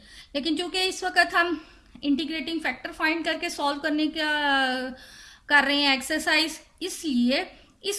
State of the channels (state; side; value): identical; both; correlation 1.00